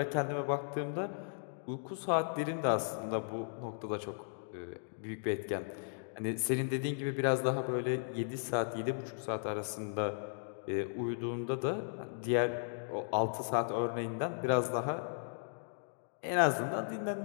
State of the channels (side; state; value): right; silent; digital silence